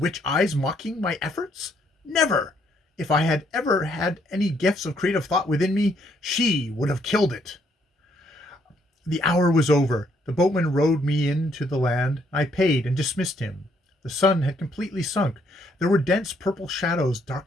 eyes mocking my efforts? Never! If I had ever had any gifts of creative thought within me, she would have killed it. The hour was over. The boatman rowed me in to the land. I paid and dismissed him. The sun had completely sunk. There were dense purple shadows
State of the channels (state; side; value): normal; both; correlation 0.70